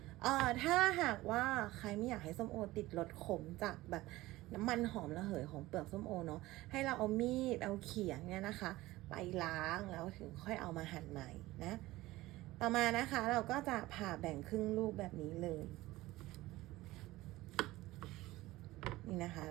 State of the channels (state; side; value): quieter; left; 18.0 dB